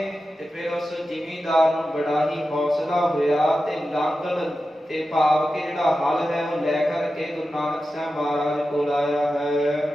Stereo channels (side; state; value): both; normal; correlation 0.92